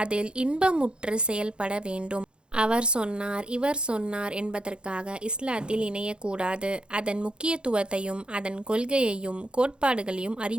அதில் இன்பமுற்று செயல்பட வேண்டும். அவர் சொன்னார், இவர் சொன்னார் என்பதற்காக இஸ்லாத்தில் இணையக்கூடாது. அதன் முக்கியத்துவத்தையும் அதன் கொள்கையையும் கோட்பாடுகளையும்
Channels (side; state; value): left; late; 0.052 ms